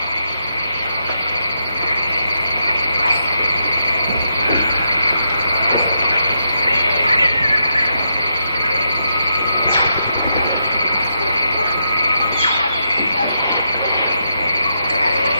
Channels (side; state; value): both; inverted; correlation -0.81